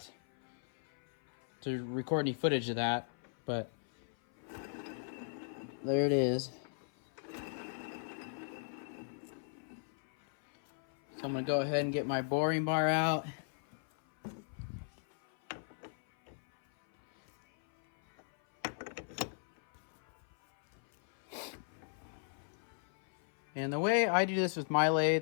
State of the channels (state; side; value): silent; right; 53 dB below the other